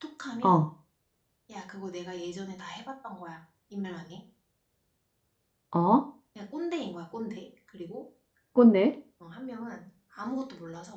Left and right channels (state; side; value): identical; both; correlation 1.00